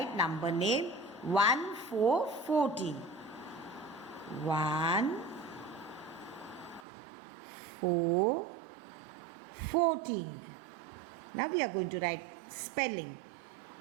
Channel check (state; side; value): drops out; left; at 6.9 s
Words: number name 1414. 1 4 14. Now we are going to write spelling.